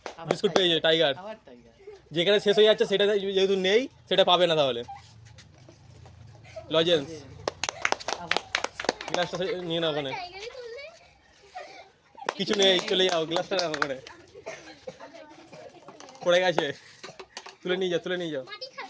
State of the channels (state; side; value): identical; both; correlation 1.00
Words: বিস্কুট পেয়েছে টাইগার। আবার টাইগার। যেখানে শেষ হয়ে যাচ্ছে সেটা যেহেতু নেই, সেটা পাবে না তাহলে। লজেন্স, আবার গ্লাসটা নিয়ে নাও ওখানে, কিছু নেই, চলে যাও, গ্লাসটা রাখো ওখানে, পড়ে গেছে, তুলে নিয়ে যাও, তুলে নিয়ে যাও।